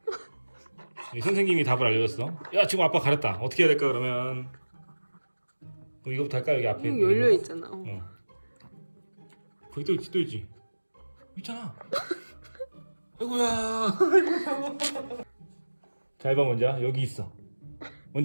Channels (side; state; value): both; inverted; correlation -1.00